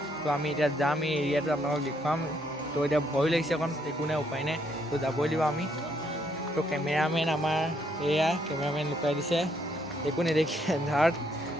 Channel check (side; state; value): both; normal; correlation 0.72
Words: তো আমি এতিয়া যাম এই এৰিয়াটো আপোনালোকক দেখুৱাম তো এতিয়া ভয় লাগিছে অকণ একো নাই উপায় নাই তো যাবই লাগিব আমি তো কেমেৰামেন আমাৰ এয়া কেমেৰামেন লুকাই দিছে একো নেদেখি এন্ধাৰত